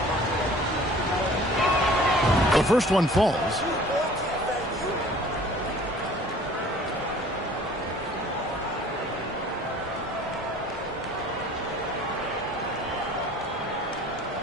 The first one falls.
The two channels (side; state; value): both; normal; correlation 0.49